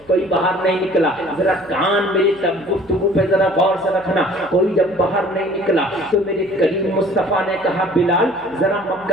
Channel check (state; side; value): noise; right; hum, 28 dB below the sound